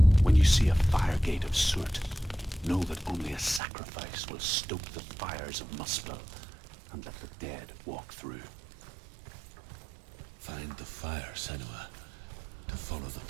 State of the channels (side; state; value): left; drops out; at 3.6 s